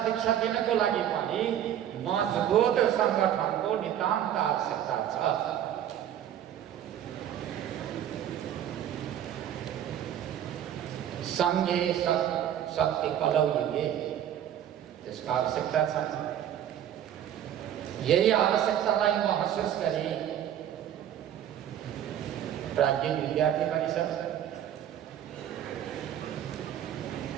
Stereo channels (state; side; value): quieter; left; 10.6 dB